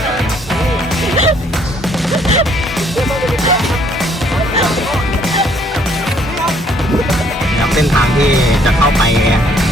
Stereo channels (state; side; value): normal; both; correlation 0.64